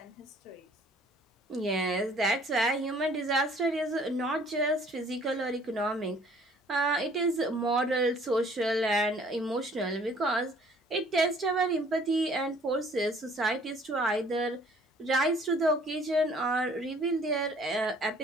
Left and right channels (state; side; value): normal; both; correlation 0.56